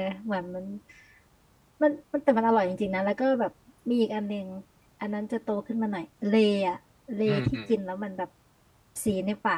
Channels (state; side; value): identical; both; correlation 1.00